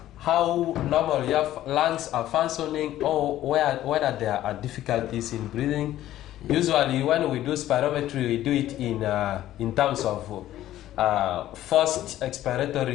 how normal your lungs are functioning, or whether there are difficulties in breathing. Usually, when we do spirometry, we do it in terms of first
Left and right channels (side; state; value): right; quieter; 13.5 dB